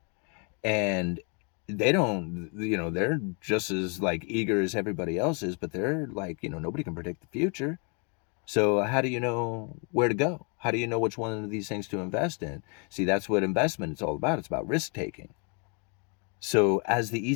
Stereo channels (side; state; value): right; quieter; 36.3 dB